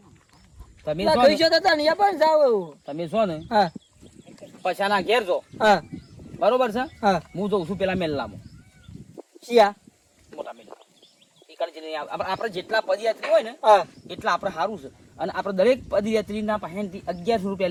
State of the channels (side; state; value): both; identical; correlation 1.00